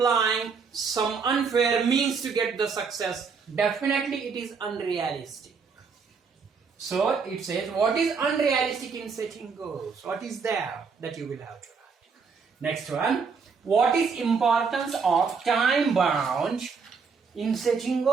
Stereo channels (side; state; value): left; quieter; 5.4 dB